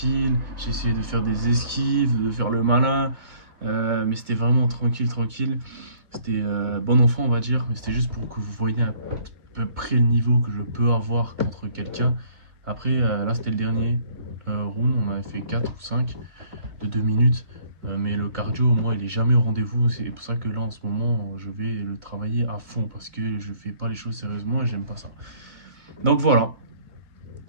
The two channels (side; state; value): left; late; 2.2 ms